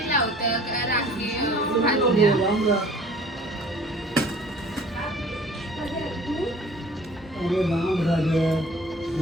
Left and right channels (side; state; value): both; normal; correlation 0.49